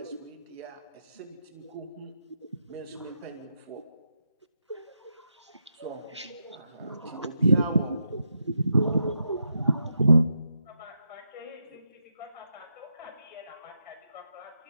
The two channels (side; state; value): both; inverted; correlation -0.83